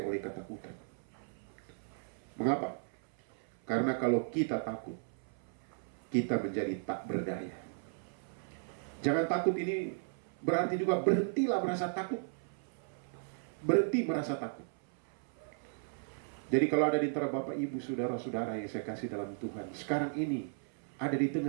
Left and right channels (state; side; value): silent; left; 54 dB below the other